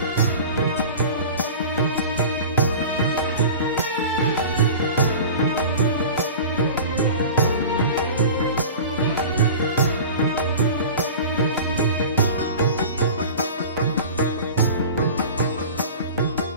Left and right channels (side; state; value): both; inverted; correlation -0.36